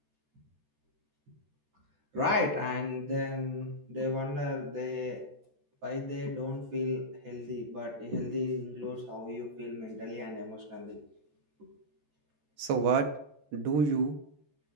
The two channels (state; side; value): late; left; 14 ms